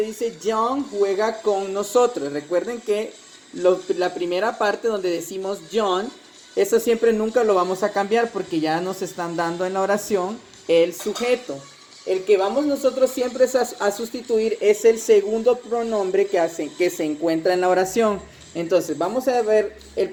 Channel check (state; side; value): identical; both; correlation 1.00